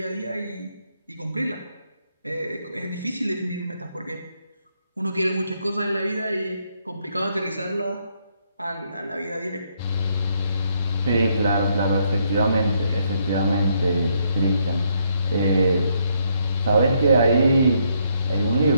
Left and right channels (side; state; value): both; inverted; correlation -0.73